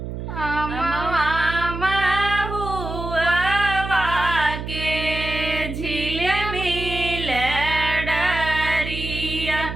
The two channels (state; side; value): noise; right; hum, 6 dB below the sound